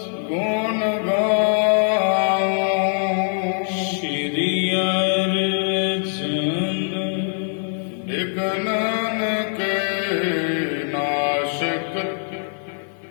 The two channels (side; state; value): right; silent; digital silence